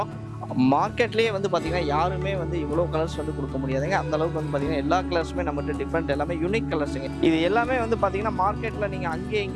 மார்க்கெட்லேயே வந்து பார்த்தீங்கன்னா யாருமே வந்து இவ்வளோ கலர்ஸ் வந்து கொடுக்க முடியாதுங்க. அந்த அளவுக்கு வந்து பார்த்தீங்கன்னா எல்லா கலர்ஸுமே நம்மகிட்ட டிஃப்ரெண்ட், எல்லாமே யூனிக் கலர்ஸுங்க. இது எல்லாமே வந்து பார்த்தீங்கன்னா மார்க்கெட்டில் நீங்கள் அங்கேயும்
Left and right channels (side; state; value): both; identical; correlation 1.00